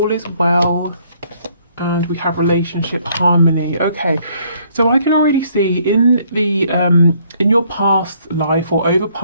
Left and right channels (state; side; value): inverted; both; correlation -0.65